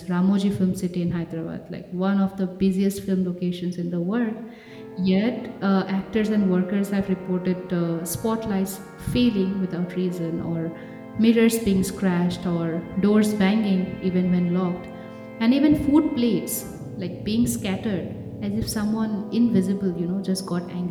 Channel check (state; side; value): identical; both; correlation 1.00